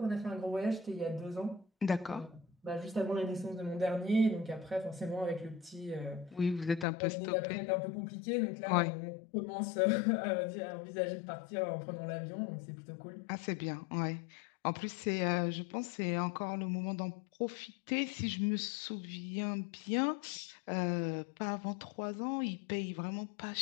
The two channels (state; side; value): drops out; right; at 6.9 s